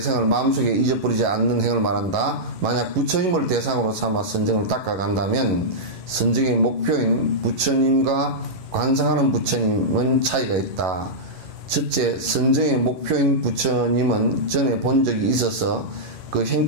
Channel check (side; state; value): left; late; 11 ms